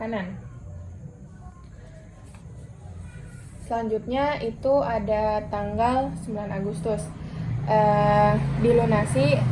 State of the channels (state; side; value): identical; both; correlation 1.00